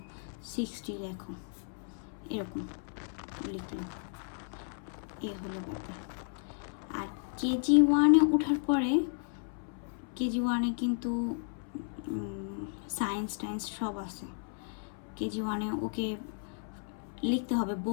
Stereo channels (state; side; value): silent; right; 55 dB below the other